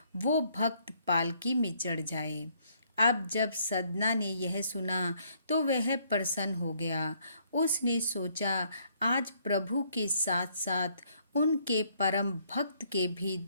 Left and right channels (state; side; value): inverted; both; correlation -0.67